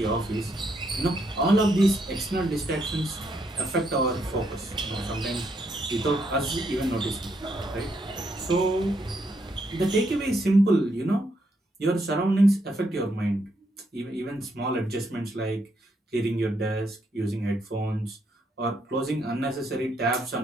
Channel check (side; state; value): both; normal; correlation 0.76